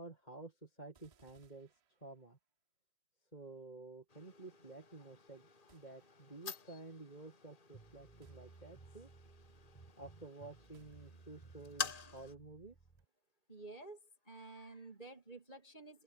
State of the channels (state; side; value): late; right; 1.8 ms